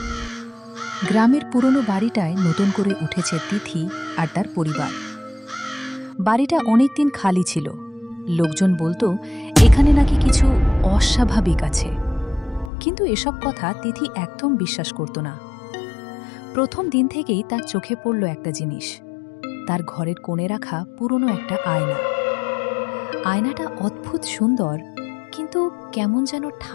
গ্রামের পুরনো বাড়িটায় নতুন করে উঠেছে তিথি আর তার পরিবার। বাড়িটা অনেকদিন খালি ছিল। লোকজন বলতো এখানে নাকি কিছু অস্বাভাবিক আছে, কিন্তু এসব কথা তিথি একদম বিশ্বাস করত না। প্রথম দিন থেকেই তার চোখে পড়ল একটা জিনিস, তার ঘরের কোণে রাখা পুরনো একটা আয়না। আয়নাটা অদ্ভুত সুন্দর, কিন্তু কেমন যেন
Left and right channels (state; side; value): drops out; right; at 12.7 s